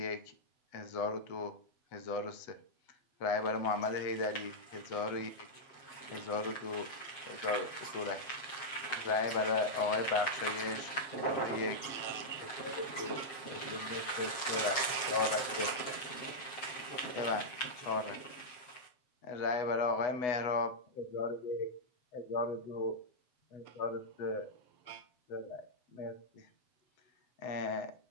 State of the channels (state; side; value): late; right; 7.5 ms